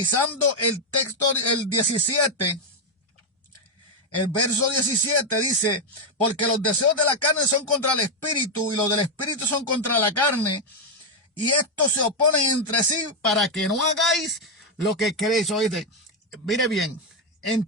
el texto, el 17, el verso 17 dice, porque los deseos de la carne son contra el espíritu y los del espíritu son contra la carne, y estos se oponen entre sí para que no hagáis lo que queréis. Oíste, mire bien,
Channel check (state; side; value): normal; both; correlation 0.03